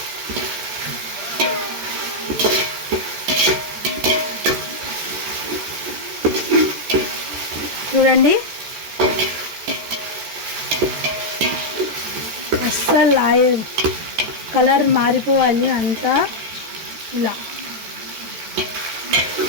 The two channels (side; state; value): left; late; 14 ms